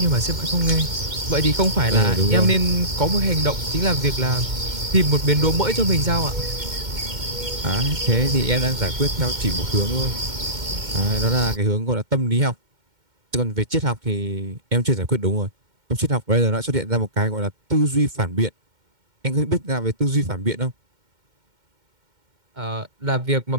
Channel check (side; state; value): left; late; 2.1 ms